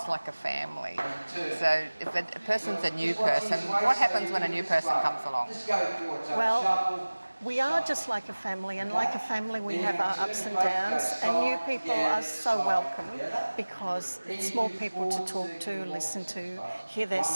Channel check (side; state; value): both; inverted; correlation -1.00